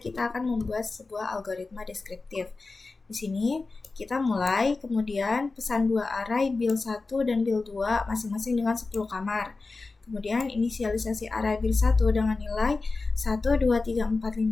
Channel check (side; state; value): right; quieter; 3.8 dB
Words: kita akan membuat sebuah algoritma deskriptif. Di sini kita mulai, kemudian pesan dua array bil 1 dan bil 2 masing-masing dengan 10 kamar. Kemudian inisialisasi array bil 1 dengan nilai 1, 2, 3, 4, 5,